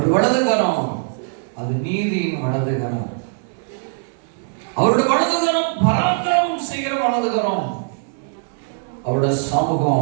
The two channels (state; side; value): silent; left; digital silence